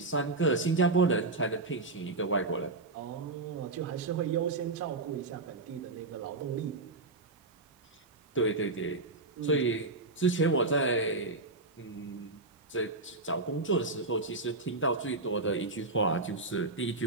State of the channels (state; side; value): quieter; left; 3.3 dB